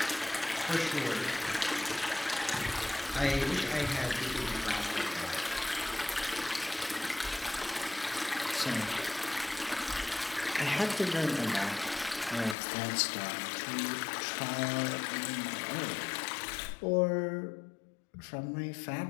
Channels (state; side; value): drops out; right; at 12.6 s